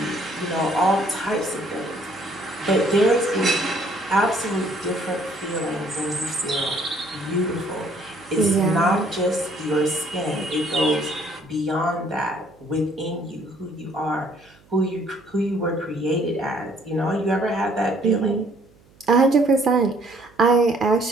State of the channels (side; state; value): right; noise; hum, 29 dB below the sound